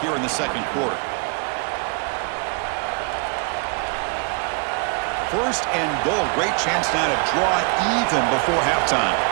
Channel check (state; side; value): quieter; left; 35.1 dB